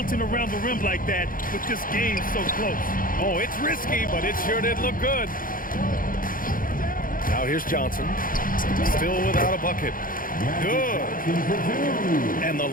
around the rim like that with this game so close. Oh, it's risky, but it sure did look good. Now here's Johnson. Still without a bucket. Good. And the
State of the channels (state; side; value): late; right; 0.40 ms